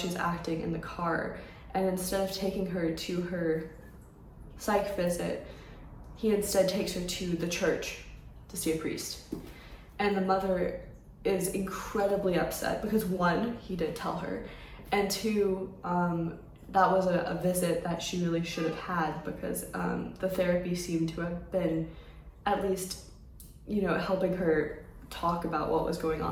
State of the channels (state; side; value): identical; both; correlation 1.00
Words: acting in the car, and instead of taking her to her psych visit, he instead takes her to the church to see a priest. And the mother is incredibly upset because, one, he didn't tell her, and two, that was a visit that she really should have had, because the therapy seemed to have been at least, helping her talk about what was going